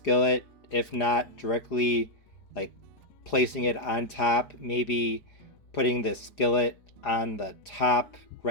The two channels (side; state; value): right; late; 4.9 ms